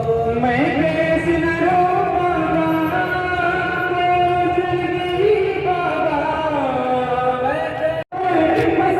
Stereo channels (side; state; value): both; identical; correlation 1.00